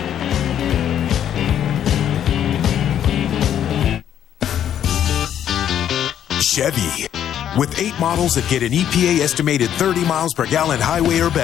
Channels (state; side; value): quieter; right; 10.1 dB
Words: Chevy. With 8 models that get an EPA estimated 30 miles per gallon highway or